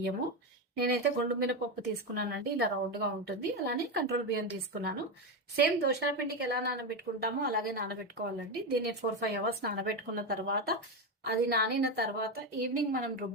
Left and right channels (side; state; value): both; normal; correlation 0.12